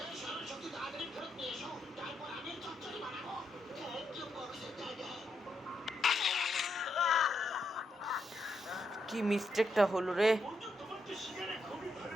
কি মিস্টেকটা হলো রে,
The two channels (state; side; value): normal; both; correlation 0.81